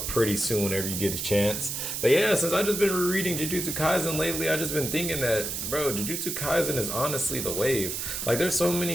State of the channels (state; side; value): noise; right; hiss, 3 dB below the sound